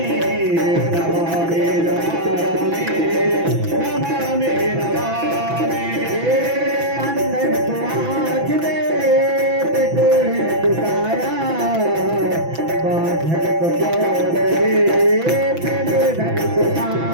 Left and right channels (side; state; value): left; late; 6.0 ms